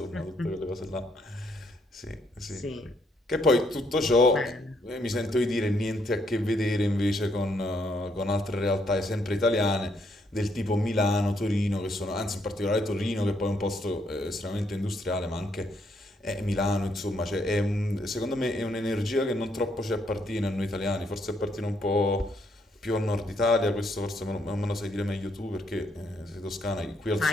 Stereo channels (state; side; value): normal; both; correlation 0.73